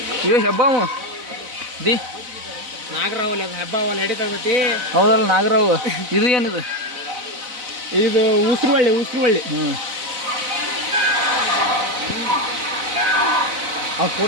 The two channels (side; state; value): left; late; 4.0 ms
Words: ಇವ ಹೆಬ್ಬಾವು ದಿ ನಾಗರಾವಲ್ಲಿ ಅದು ಹಬ್ಬವಲ್ಲ ಹಿಡಿತೈತಿ. ಹೌದಲ್ಲ ನಾಗರಾವ್. ಇದು ಏನಿದು? ಇದು ಉಸ್ರುವಳ್ಳಿ. ಅವ್ರು